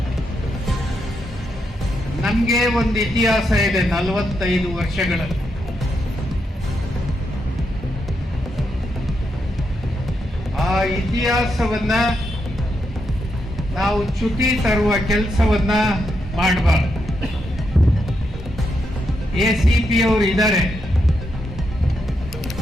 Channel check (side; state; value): both; normal; correlation 0.82